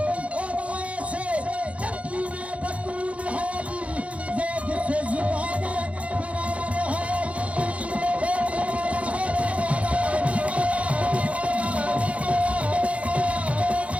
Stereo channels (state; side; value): late; left; 0.064 ms